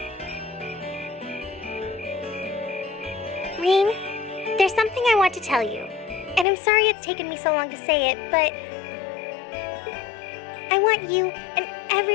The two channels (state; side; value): drops out; right; at 6.5 s